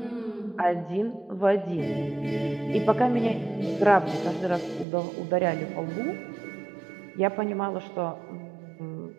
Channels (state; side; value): drops out; left; at 4.9 s